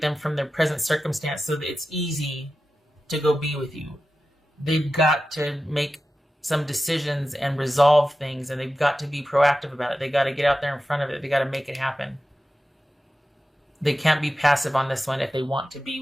them from their present circumstance so that it's easy to go be with you. They've got to make some decisions and resolve things, and they've got to be proactive about it. They got to get out there in front of it. They got to make it happen. They can't be passive on this one if they want to be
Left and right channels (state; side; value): normal; both; correlation 0.93